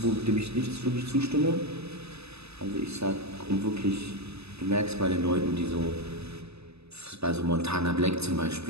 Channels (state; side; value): late; left; 0.79 ms